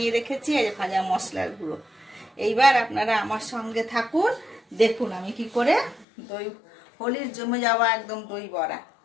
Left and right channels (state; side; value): drops out; right; at 6.1 s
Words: রেখেছি, এই যে ভাজা মশলার গুঁড়ো। এইবার আপনারা আমার সঙ্গে থাকুন, দেখুন আমি কি করে দই হোলির জমে যাওয়া একদম দই বড়া